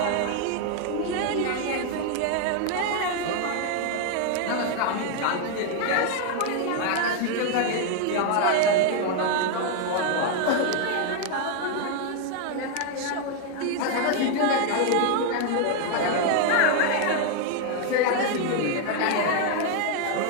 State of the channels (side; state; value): both; different; correlation 0.00